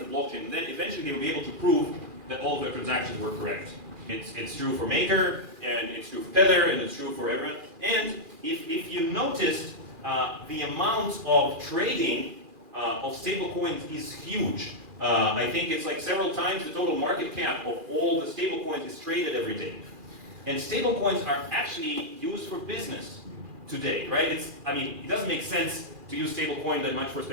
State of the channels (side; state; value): left; late; 2.4 ms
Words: blockchain. And then eventually they will be able to prove that all of their transactions were correct. It's true for Maker, and it's true for Tether, and it's true for everyone. And if you noticed, the amount of trading of stablecoins is huge. I think it's like several times the total market cap of all the stablecoins is traded every day. And stablecoins are actually used for business today, right? It doesn't make sense to use stablecoin that much for